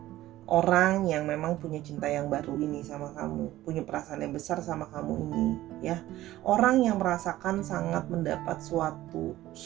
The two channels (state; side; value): quieter; left; 15.2 dB